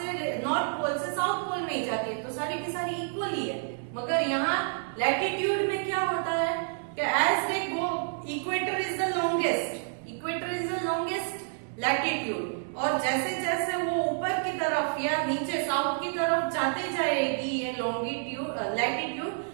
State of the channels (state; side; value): silent; left; digital silence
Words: पोल से साउथ पोल में ही जाती है, तो सारी की सारी इक्वल ही है। मगर यहाँ लैटिट्यूड में क्या होता है कि as they go, equator is the longest, latitude, और जैसे जैसे वो ऊपर की तरफ या नीचे साउथ की तरफ जाते जाएगी ये लॉन्गिट्यूड लैटिट्यूड